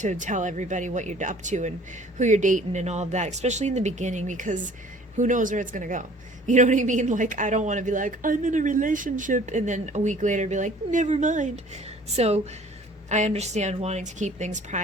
tell everybody what you're up to and who you're dating and all of that, especially in the beginning, because who knows where it's going to go. You know what I mean? Like, I don't want to be like, I'm in a relationship, and then a week later be like, never mind. So I understand wanting to keep things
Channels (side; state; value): both; normal; correlation 0.52